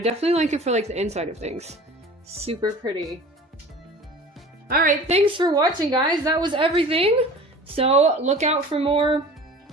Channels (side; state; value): both; normal; correlation 0.41